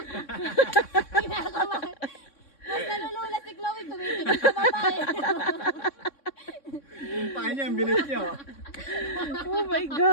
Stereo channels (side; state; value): right; late; 3.6 ms